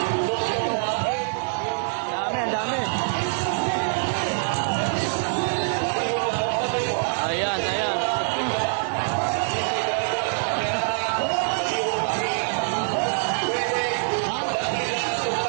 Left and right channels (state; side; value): silent; left; digital silence